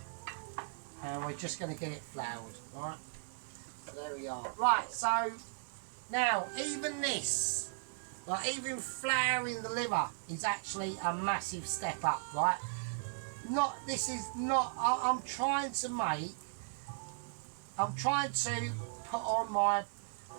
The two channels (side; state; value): left; silent; digital silence